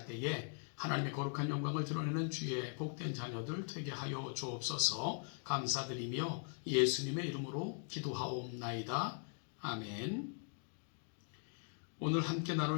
때에 하나님의 거룩한 영광을 드러내는 주의 복된 자녀들 되게 하여 주옵소서. 감사드리며 예수님의 이름으로 기도하옵나이다. 아멘. 오늘 함께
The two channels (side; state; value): right; silent; 51 dB below the other